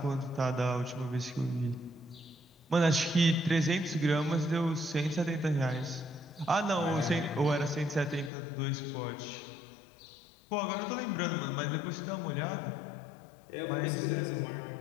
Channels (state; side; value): drops out; right; at 8.3 s